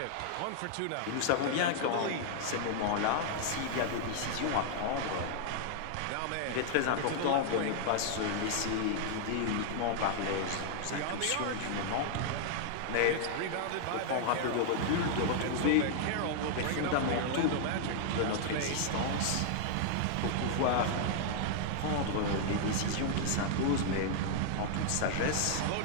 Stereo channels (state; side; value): different; both; correlation -0.01